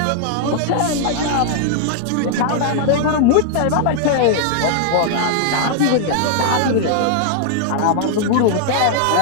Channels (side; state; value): both; different; correlation -0.01